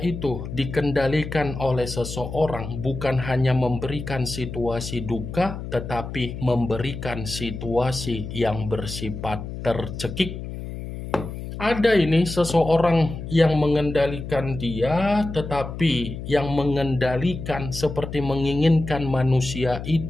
dikendalikan oleh seseorang bukan hanya memberikan situasi duka, tetapi memberikan situasi yang bersifat tercekik. Ada ini seseorang yang mengendalikan dia, tetapi yang mengendalikan seperti menginginkan manusia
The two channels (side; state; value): left; noise; hum, 8 dB below the sound